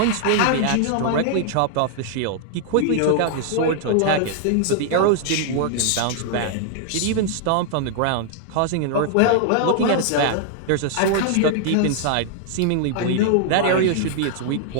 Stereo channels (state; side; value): different; both; correlation 0.00